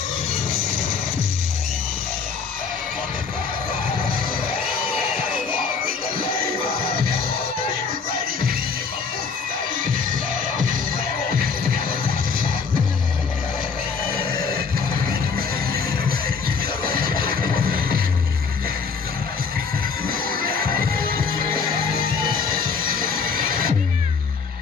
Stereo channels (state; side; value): quieter; right; 5.4 dB